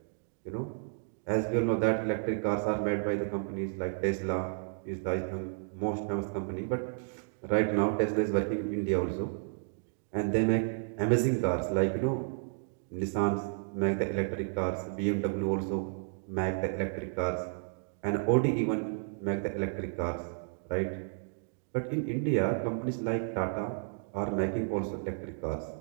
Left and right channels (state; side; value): silent; left; digital silence